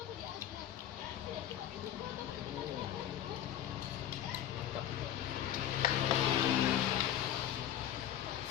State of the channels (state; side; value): quieter; right; 11.1 dB